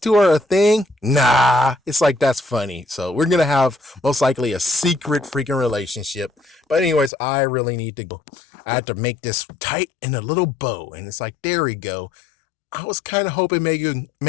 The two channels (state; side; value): drops out; right; at 7.1 s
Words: are a thing? Nah." It's like, that's funny. So we're gonna have most likely a secret freaking relationship. But anyways, I really need to go. I had to make this tight in a little bow, and it's like, there we go. I was kind of hoping